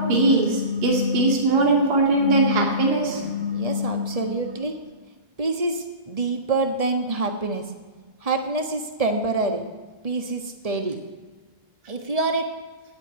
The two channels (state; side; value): late; left; 1.7 ms